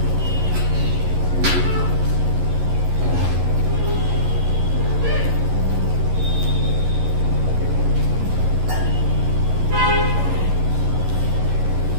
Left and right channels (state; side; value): late; left; 11 ms